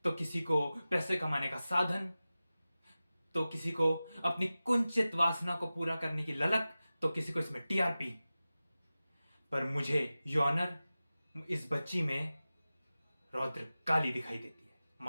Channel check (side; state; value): both; inverted; correlation -0.96